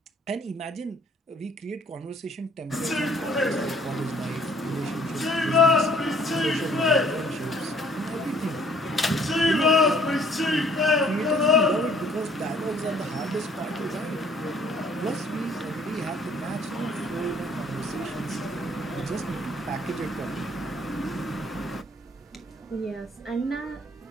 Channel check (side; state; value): both; normal; correlation 0.59